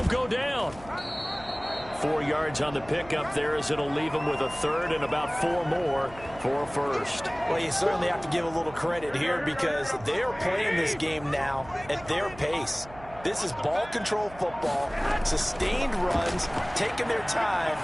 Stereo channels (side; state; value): right; noise; hum, 19 dB below the sound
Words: go down. 4 yards on the pickup there, as it'll leave him with a 3rd and about 4 more for a 1st. Well, you certainly have to give a little credit here, because they're playing this game now at their pace. This is ball control football, sustained runs, taking their time